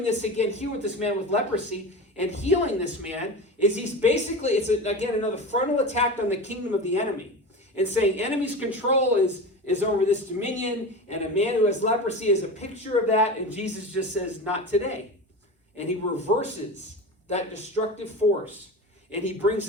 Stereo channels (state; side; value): normal; both; correlation 0.28